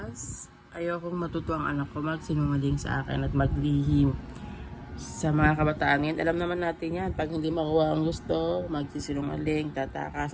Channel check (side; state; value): both; identical; correlation 1.00